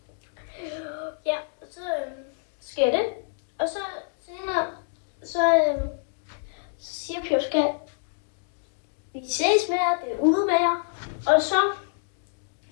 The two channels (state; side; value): silent; right; digital silence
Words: Ja, og så sker det. Og så senere, så siger Pjovs kat, vi ses med jer, det er ude med jer. Og så